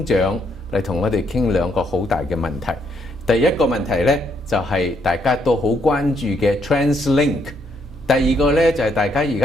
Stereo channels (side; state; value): both; normal; correlation 0.73